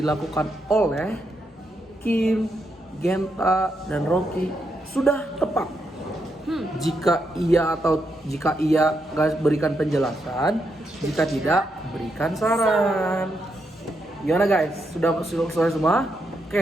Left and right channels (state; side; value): normal; both; correlation 0.81